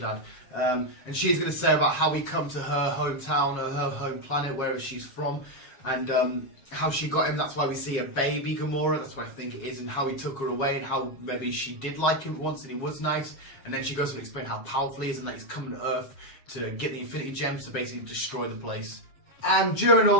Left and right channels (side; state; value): right; late; 7.4 ms